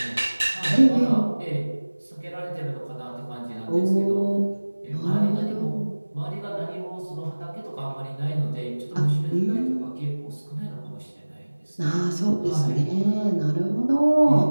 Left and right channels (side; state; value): both; inverted; correlation -1.00